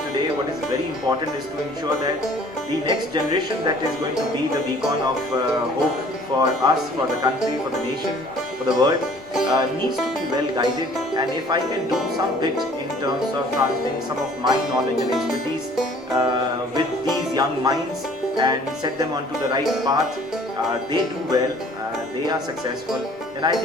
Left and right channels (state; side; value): normal; both; correlation 0.53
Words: today what is very important is to ensure that the next generation that is going to be the beacon of hope for us, for the country, for the nation, for the world, needs to be well guided. And if I can do some bit in terms of transferring some of my knowledge and expertise with these young minds and set them onto the right path, they do well, they are successful, then I